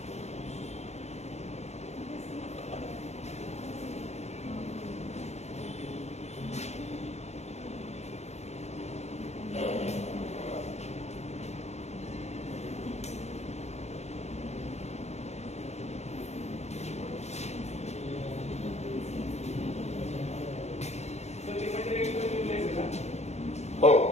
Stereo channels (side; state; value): right; late; 0.32 ms